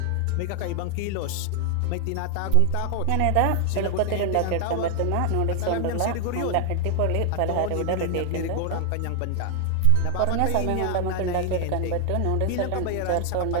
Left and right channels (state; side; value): different; both; correlation 0.00